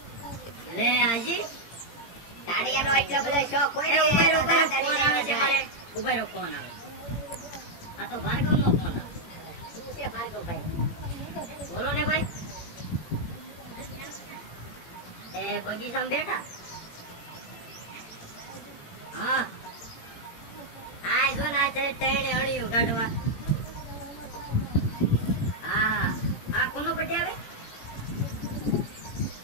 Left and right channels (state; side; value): late; right; 17 ms